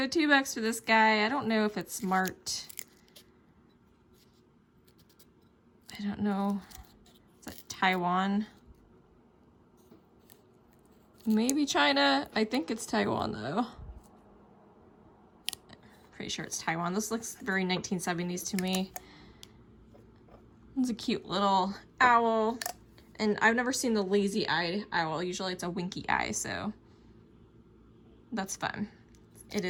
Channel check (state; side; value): identical; both; correlation 1.00